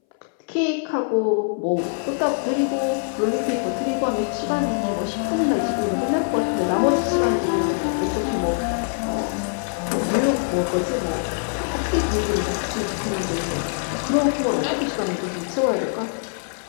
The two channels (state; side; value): silent; right; 62 dB below the other